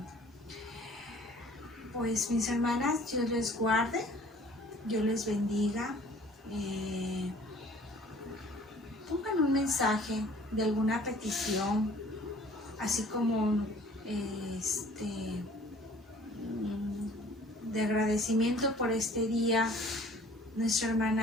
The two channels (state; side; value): normal; both; correlation 0.52